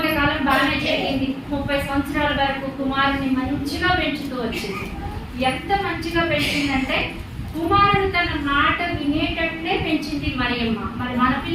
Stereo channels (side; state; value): both; identical; correlation 1.00